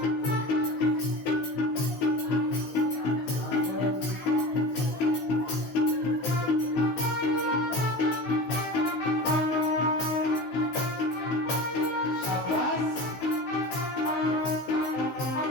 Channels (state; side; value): late; right; 15 ms